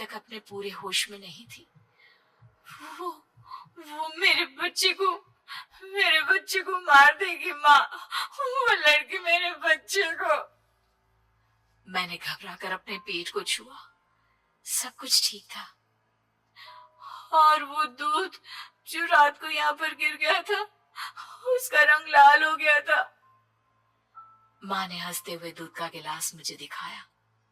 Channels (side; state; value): both; identical; correlation 1.00